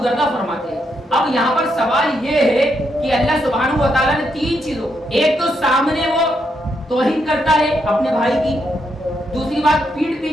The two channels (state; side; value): normal; both; correlation 0.79